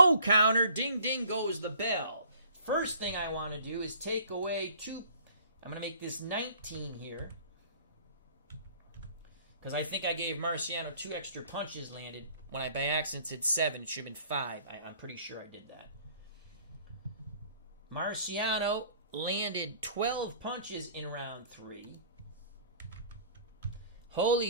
counter. Ding, ding goes the bell. First thing I want to do is take away 2. I'm going to make this 19 here, because I think I gave Marciano 2 extra punches landed when I by accident said 7. It should have been 5. I'm pretty sure I did that. Marciano landed 12 punches in round 3.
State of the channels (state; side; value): inverted; both; correlation -0.53